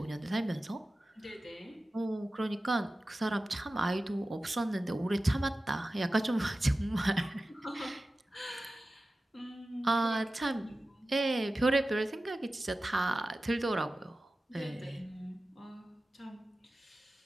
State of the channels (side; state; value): both; normal; correlation 0.95